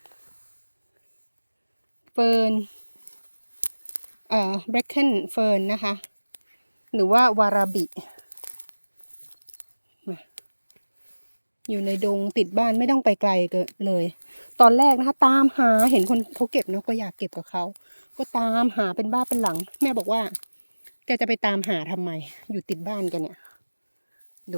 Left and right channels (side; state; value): both; inverted; correlation -1.00